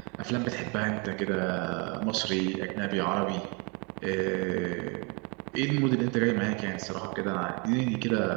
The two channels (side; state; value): left; quieter; 31.9 dB